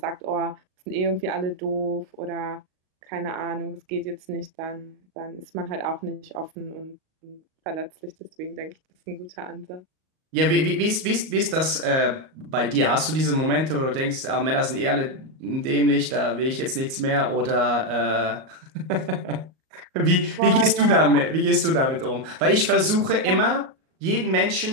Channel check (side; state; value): left; late; 38 ms